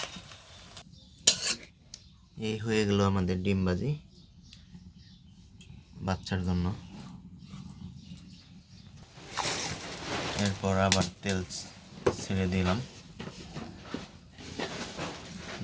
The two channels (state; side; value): identical; both; correlation 1.00